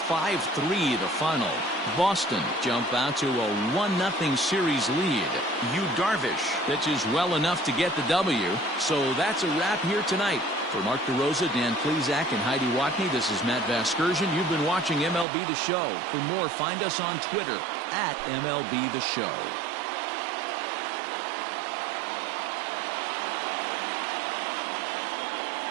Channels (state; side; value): drops out; left; at 15.2 s